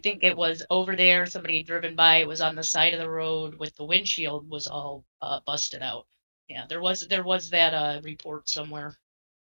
it was over there. Somebody had driven by. It was on the side of the road with the windshield was all busted out. Yeah, there was that report somewhere.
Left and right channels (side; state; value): both; inverted; correlation -1.00